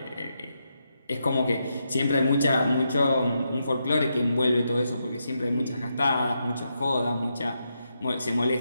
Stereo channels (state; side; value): inverted; both; correlation -0.83